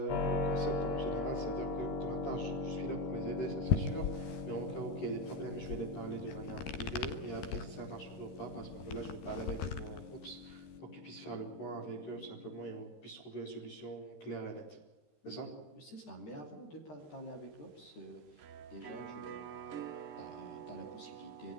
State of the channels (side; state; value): right; late; 13 ms